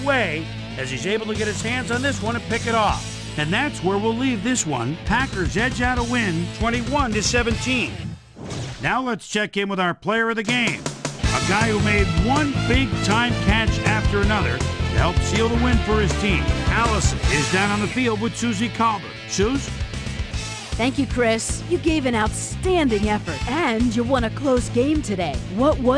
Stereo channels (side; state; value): both; identical; correlation 1.00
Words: way as he's able to get his hands on this one and pick it off. And that's where we'll leave this one. Packers edge out a win, 21-17. Now let's check in with our player of the game, a guy who made one big-time catch after another to help seal the win for his team. Allison is down on the field with Susie Calder. Suze? Thank you, Chris. You gave an outstanding effort, and you won a close game today. What